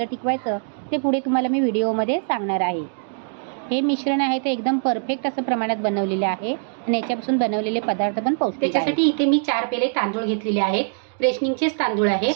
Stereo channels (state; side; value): silent; left; digital silence